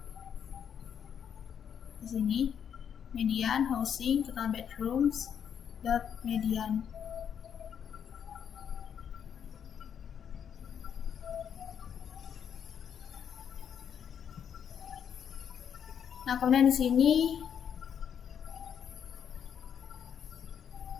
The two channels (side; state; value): right; quieter; 8.2 dB